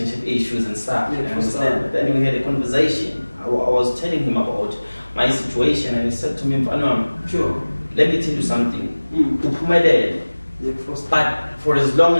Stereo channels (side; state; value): both; inverted; correlation -1.00